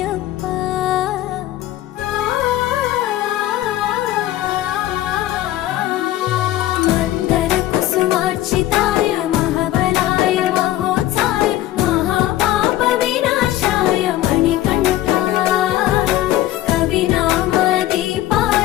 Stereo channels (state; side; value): quieter; right; 14.4 dB